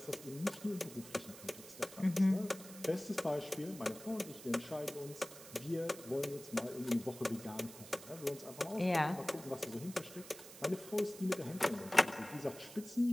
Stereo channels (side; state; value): right; noise; hiss, 15 dB below the sound